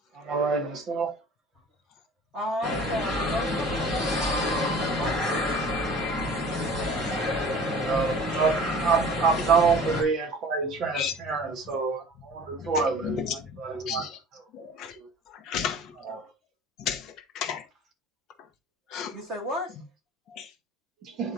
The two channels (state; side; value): normal; both; correlation 0.44